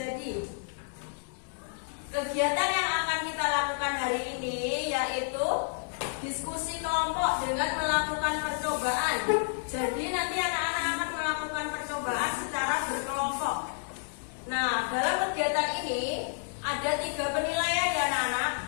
Kegiatan yang akan kita lakukan hari ini yaitu diskusi kelompok dengan melakukan percobaan. Jadi nanti anak-anak akan melakukan percobaan secara berkelompok. Nah, dalam kegiatan ini ada 3 penilaian ya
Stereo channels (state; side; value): silent; right; digital silence